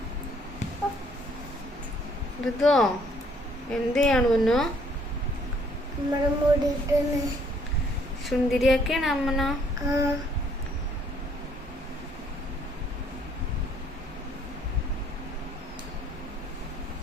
ഇതോ എന്ത് ചെയ്യാണ് പൊന്നു? സുന്ദരിയാക്കാണ് അമ്മന.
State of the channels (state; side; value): normal; both; correlation 0.63